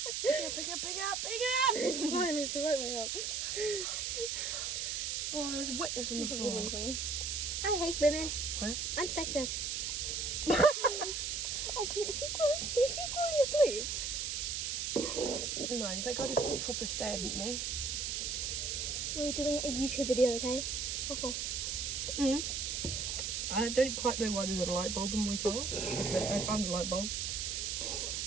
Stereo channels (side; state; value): right; noise; hiss, 1 dB below the sound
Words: Pick it up! It's fine, it's the right way up. Oh, there's wetness on the There's a floor. woman coming. I hate women. What? I'm sexist. Oh, is she falling asleep? No, that guy just proper stared at me. We're doing a YouTube video, okay? Oh. I don't quite know why there's a light bulb in my car, but I found a light bulb.